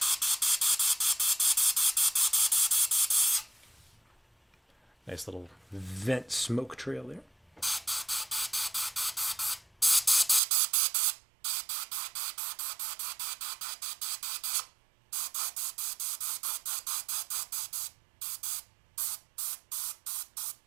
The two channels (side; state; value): left; drops out; at 10.4 s